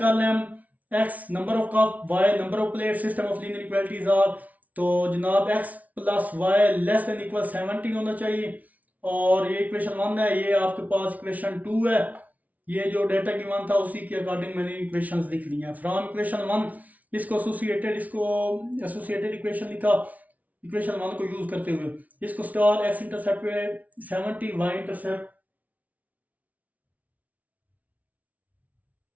लें हम x number of cup, y number of plate, system of linear equalities are. तो जनाब x plus y less than equal 70 होना चाहिए और ये इक्वेशन 1 है। ये आपके पास इक्वेशन 2 है। ये जो डेटा गिवन था उसी के अकॉर्डिंग मैंने इक्वेशंस लिख ली हैं। फ्रॉम इक्वेशन 1 इसको एसोसिएटेड इक्वेशन लिखा इक्वेशन 1 को यूज करते हुए। इसको स्टार एक्स इंटरसेप्ट पे 70, वाई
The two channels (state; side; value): late; left; 0.072 ms